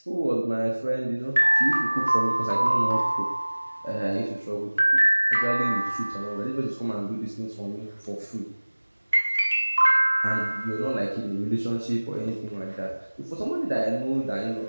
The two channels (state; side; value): inverted; both; correlation -1.00